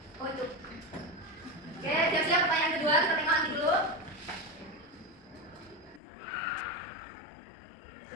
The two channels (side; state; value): right; drops out; at 6.0 s